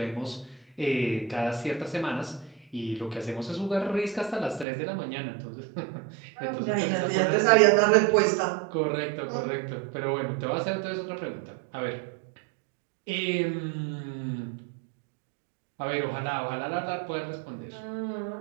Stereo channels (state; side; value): drops out; left; at 4.7 s